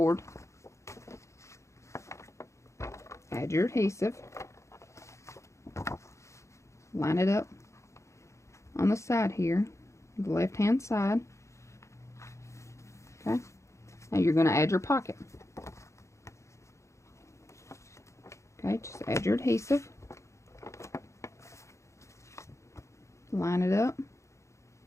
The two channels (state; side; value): late; right; 0.14 ms